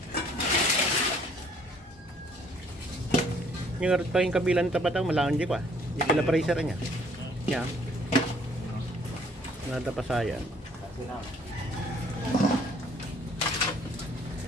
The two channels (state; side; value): normal; both; correlation 0.61